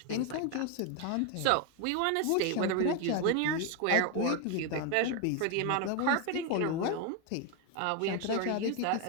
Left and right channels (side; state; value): both; different; correlation 0.01